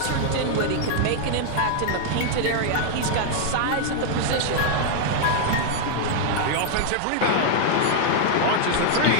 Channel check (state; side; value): different; both; correlation 0.00